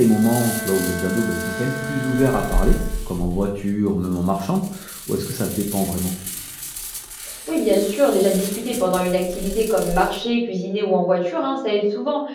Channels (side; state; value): both; identical; correlation 1.00